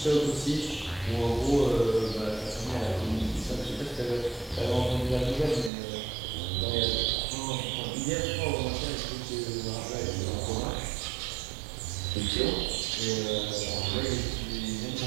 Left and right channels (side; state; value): left; drops out; at 5.7 s